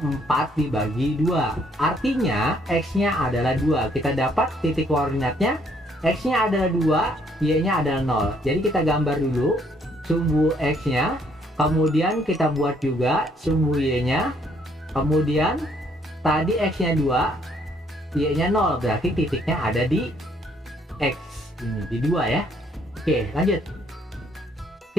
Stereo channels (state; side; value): normal; both; correlation 0.67